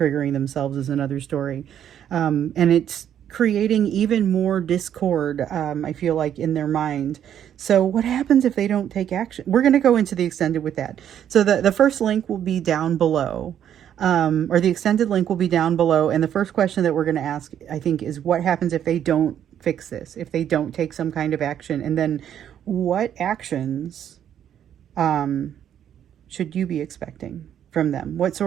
themselves is another story. And it's creating even more discord, I feel like, in their mind. So what happens if they don't take action? We're going to go into the extended with that. So the first link will be down below, or the extended link will be down below. And the first question that we're going to ask, I think, is what happens if they don't fix this, if they don't take some kind of action? And then what actions should you be expecting? from them? What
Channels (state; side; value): quieter; left; 9.8 dB